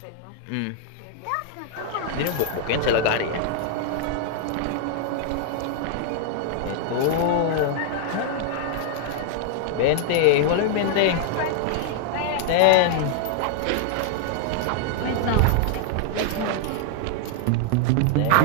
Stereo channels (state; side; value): different; both; correlation -0.01